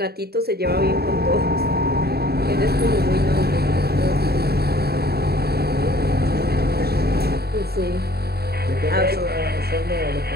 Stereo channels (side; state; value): left; late; 0.46 ms